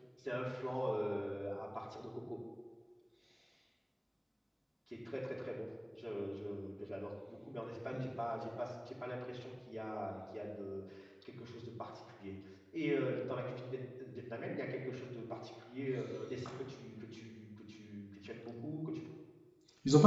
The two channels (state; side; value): identical; both; correlation 1.00